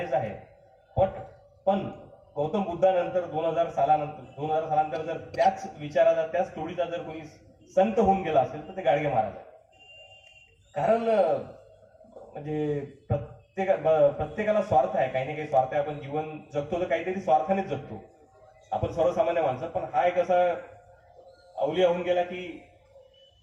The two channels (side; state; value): both; identical; correlation 1.00